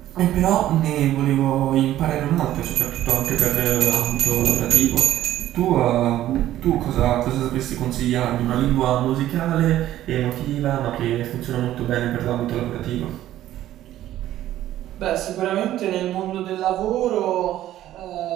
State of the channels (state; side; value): quieter; left; 13.4 dB